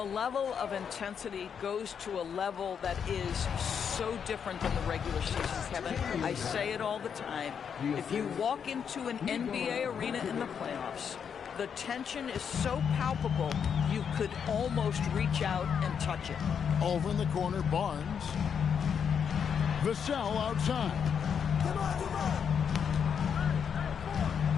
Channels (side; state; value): right; quieter; 7.3 dB